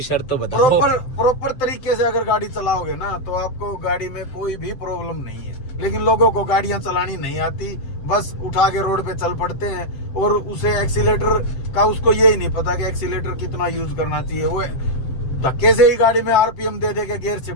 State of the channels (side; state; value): right; late; 7.8 ms